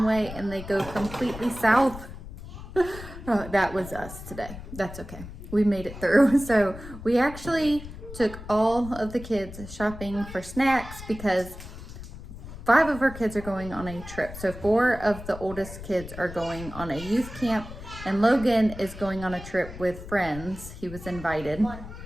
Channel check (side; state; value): left; noise; rumble, 13 dB below the sound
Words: way and they go completely south. Oh, that was us today. That's okay. We made it through. So we actually took all of the kids shopping for snacks because 5 of our kids are going on a trip. So 4 of the oldest kids are going on a youth camp, and Logan is going on a trip with friends. He was invited. 1.